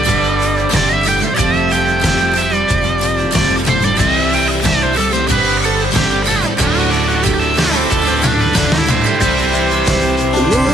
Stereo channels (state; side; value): normal; both; correlation 0.74